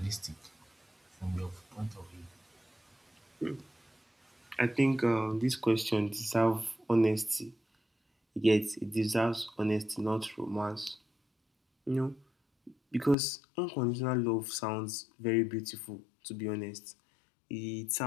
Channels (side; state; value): right; drops out; at 13.2 s